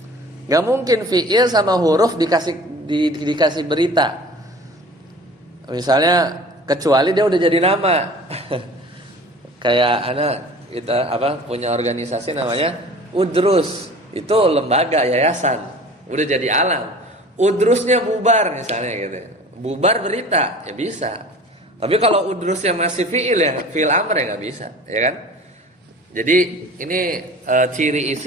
Nggak mungkin fiil sama huruf dikasih berita, misalnya, kecuali dia udah jadi nama. Kayak anak kita punya organisasi namanya Udrus, itu lembaga yayasan, udah jadi alam. Udrusnya bubar misalnya gitu, bubar berita ya bisa. Tapi kalau udrusnya masih fiil, ya fiil amr, ya nggak bisa, ya kan? Jadi ini ciri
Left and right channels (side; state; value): both; normal; correlation 0.43